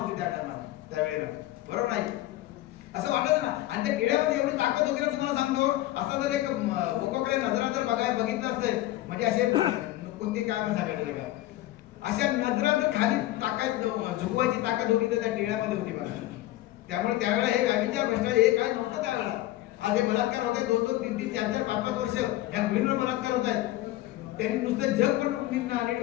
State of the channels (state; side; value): quieter; right; 15.9 dB